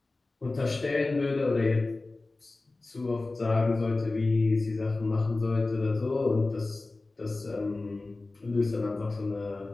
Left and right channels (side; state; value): right; quieter; 3.3 dB